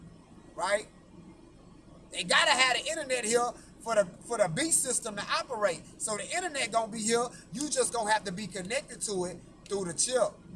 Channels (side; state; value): both; identical; correlation 1.00